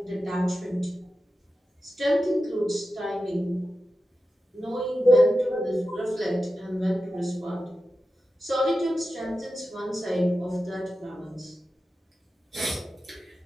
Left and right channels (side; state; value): both; normal; correlation 0.92